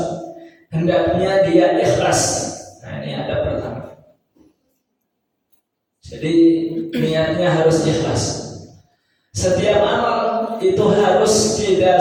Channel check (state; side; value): identical; both; correlation 1.00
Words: hendaknya dia ikhlas. Nah ini adab pertama. Jadi niatnya harus ikhlas. Setiap amal itu harus